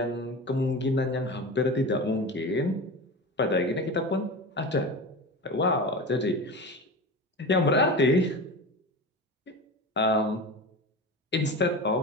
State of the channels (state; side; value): normal; both; correlation 0.28